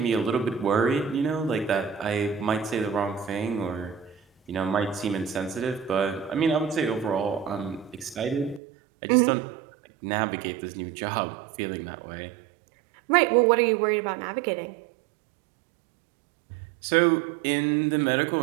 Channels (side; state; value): left; drops out; at 8.6 s